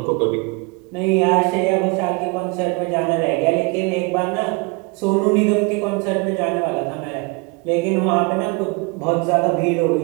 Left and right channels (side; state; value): left; quieter; 28.6 dB